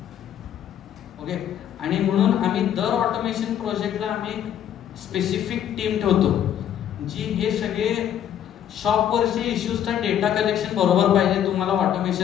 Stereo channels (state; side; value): quieter; right; 10.1 dB